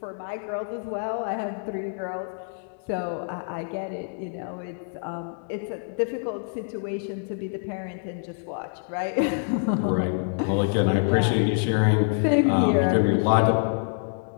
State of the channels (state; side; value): silent; right; digital silence